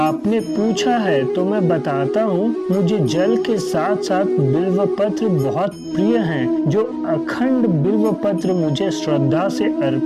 पूछा है तो मैं बताता हूँ। मुझे जल के साथ साथ बिल्व पत्र बहुत प्रिय हैं। जो अखंड बिल्व पत्र मुझे श्रद्धा से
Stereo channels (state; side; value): identical; both; correlation 1.00